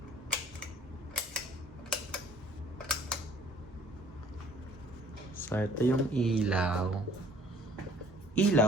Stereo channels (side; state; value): both; normal; correlation 0.55